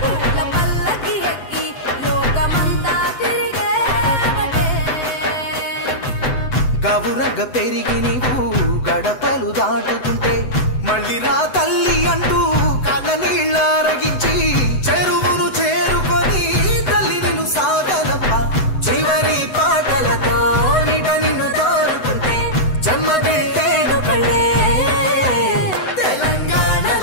గవురగ పెరిగి నీవు గడపలు దాటుతుంటే మళ్ళీ రా తల్లి అంటూ కళ్ళ నీళ్ళ అరగి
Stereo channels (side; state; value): right; late; 7.9 ms